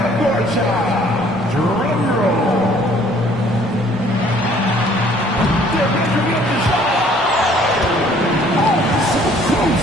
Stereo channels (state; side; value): normal; both; correlation 0.58